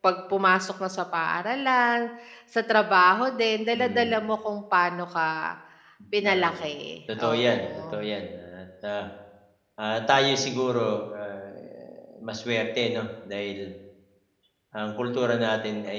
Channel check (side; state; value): both; identical; correlation 1.00